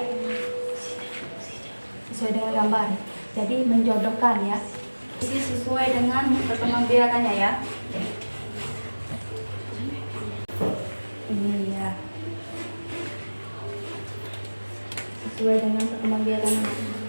sesuai dengan gambar, jadi menjodohkan ya, sesuai dengan perkembangbiakannya ya. Ini ya, sesuai dengan perkembangbiakannya.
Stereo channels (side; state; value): both; inverted; correlation -1.00